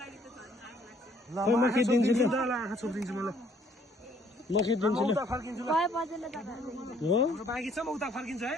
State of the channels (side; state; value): both; normal; correlation 0.63